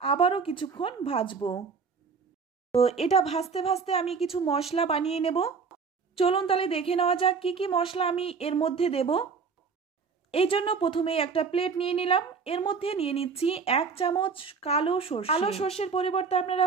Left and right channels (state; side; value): quieter; left; 5.4 dB